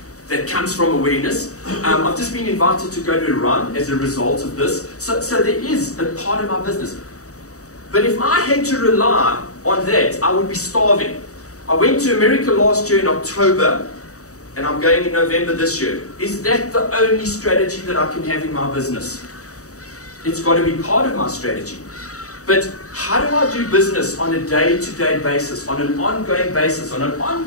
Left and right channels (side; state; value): right; late; 0.66 ms